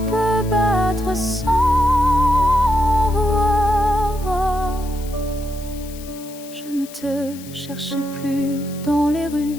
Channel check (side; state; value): left; noise; hiss, 18 dB below the sound